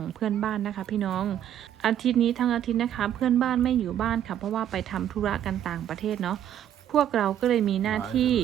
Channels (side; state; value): left; quieter; 10.5 dB